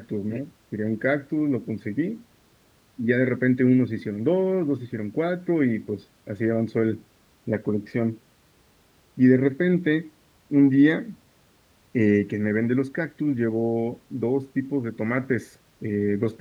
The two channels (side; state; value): both; identical; correlation 1.00